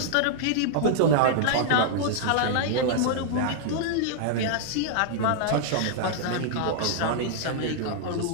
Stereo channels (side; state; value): both; different; correlation -0.01